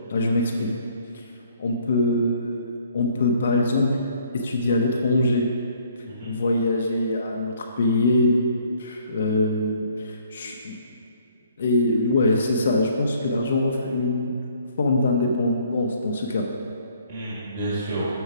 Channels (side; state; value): both; inverted; correlation -0.61